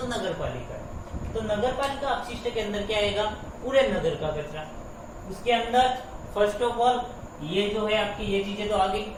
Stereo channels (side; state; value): both; identical; correlation 1.00